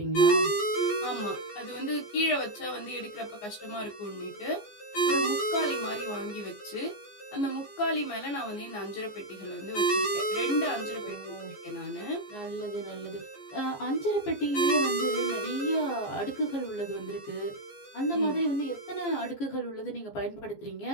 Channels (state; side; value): late; right; 14 ms